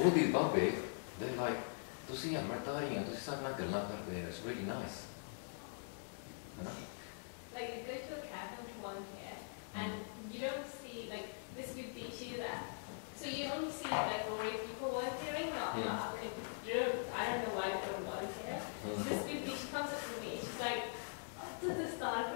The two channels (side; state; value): right; silent; digital silence